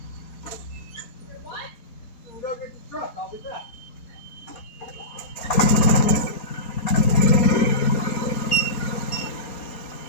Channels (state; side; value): late; right; 4.3 ms